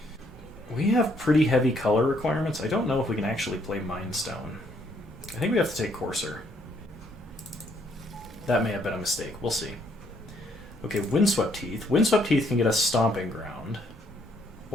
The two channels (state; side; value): normal; both; correlation 0.69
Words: we have pretty heavy color requirements. I don't know if we can actually play Mindstone. I think we have to take Coarser. That may have been a mistake. We'll see. Okay, Windswept Heath. Windswept Heath can get us Stomping Ground,